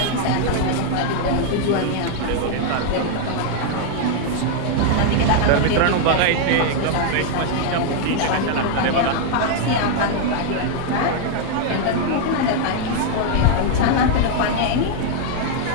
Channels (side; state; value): both; different; correlation 0.00